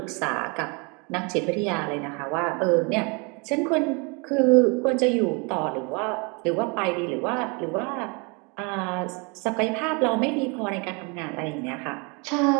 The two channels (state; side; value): quieter; left; 31.3 dB